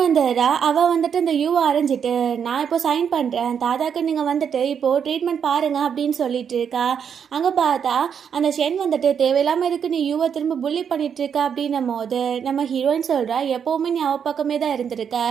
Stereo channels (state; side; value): quieter; left; 7.5 dB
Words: வந்துடுறா. அவள் வந்துட்டு இந்த யூவை அரைஞ்சிட்டு, நான் இப்போ சைன் பண்ணுறேன், தாத்தாக்கு நீங்கள் வந்துட்டு இப்போது ட்ரீட்மெண்ட் பாருங்கள் அப்படின்னு சொல்லிட்டு இருக்கா. அங்கே பார்த்தா அந்த ஷென் வந்துட்டு தேவையில்லாமல் இருக்கு நீ யூவை திரும்ப புள்ளி பண்ணிகிட்ருக்கா அப்படின்னும் போது நம்ம ஹீரோயின் சொல்கிறா, எப்போவுமே நீ அவள் பக்கமே தான் இருந்திருக்க,